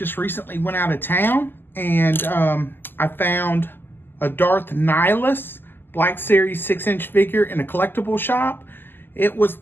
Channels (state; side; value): late; right; 0.095 ms